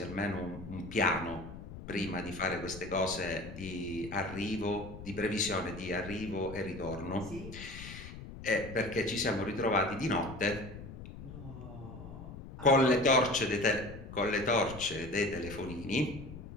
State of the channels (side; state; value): left; noise; rumble, 12 dB below the sound